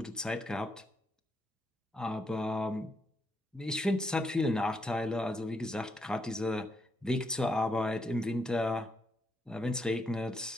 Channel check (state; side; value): normal; both; correlation 0.79